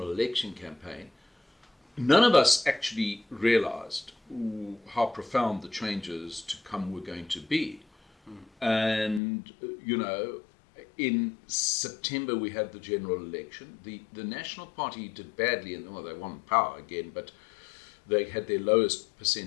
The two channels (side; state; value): right; drops out; at 9.2 s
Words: election campaign. None of us actually realized how profound the changes to come were going to be. And, in September we had the general election. The National Party did badly, and they won power again, but they had their lowest